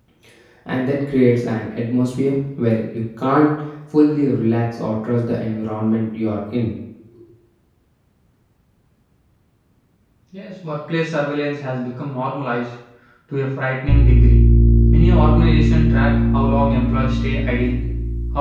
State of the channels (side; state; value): both; identical; correlation 1.00